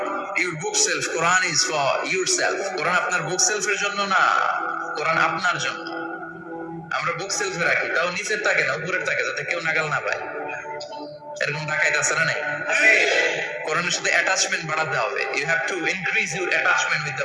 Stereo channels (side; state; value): both; identical; correlation 1.00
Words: your bookshelf, Quran is for yourself. Quran আপনার বুক সেলফের জন্য না, কোরআন আপনার জন্য। আমরা বুক সেলফে রাখি, তাও নিচের তাকে না, উপরের তাকে, যাতে কেউ নাগাল না পায়। এরকম ডাকাইত আছে না নাই? কোরআনের সাথে অ্যাটাচমেন্ট বাড়াতে হবে। You have to increase your attachment with